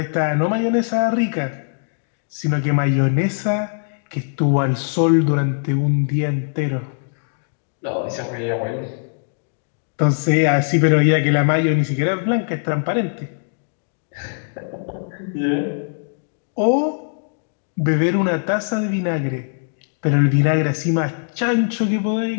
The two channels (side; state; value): right; silent; digital silence